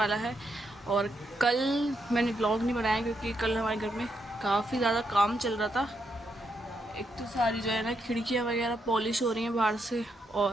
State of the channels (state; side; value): normal; both; correlation 0.80